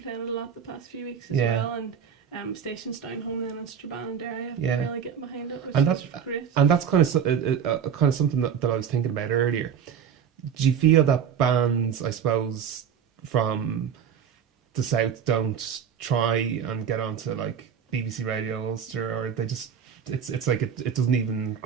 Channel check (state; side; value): quieter; left; 7.9 dB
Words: it a lot the past few weeks as well, and stations down home then in Strabane and Derry. I've been really getting behind it, which is great. And that's kind of something that I was thinking about earlier. Do you feel that bands, I suppose, from the south don't try and get onto like BBC Radio Ulster, or they just it's like it doesn't even